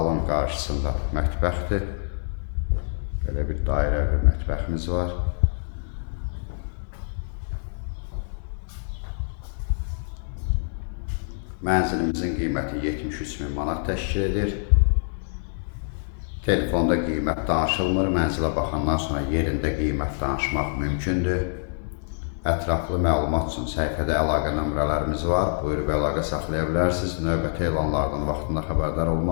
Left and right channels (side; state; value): right; silent; digital silence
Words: qarşısında mətbəxdir. Belə bir dairə bir mətbəximiz var. Mənzilimizin qiyməti 73.000 manat təşkil edir. Telefonda qiymət danışılmır. Mənzilə baxandan sonra yerində qiymət danışmaq mümkündür. Ətraflı məlumat üçün səhifədə əlaqə nömrələrimiz var. Buyurub əlaqə saxlaya bilərsiniz. Növbəti elanlardan vaxtında xəbərdar